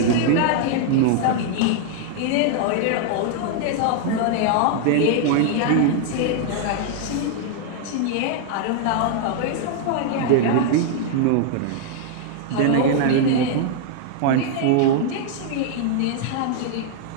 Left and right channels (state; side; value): different; both; correlation 0.00